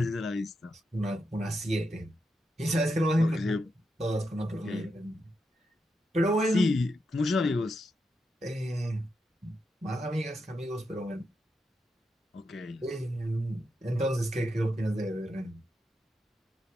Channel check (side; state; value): both; normal; correlation 0.85